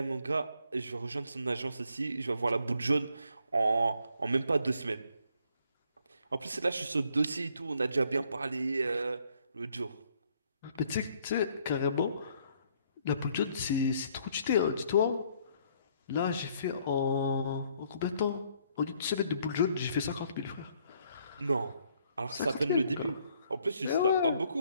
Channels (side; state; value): both; inverted; correlation -0.67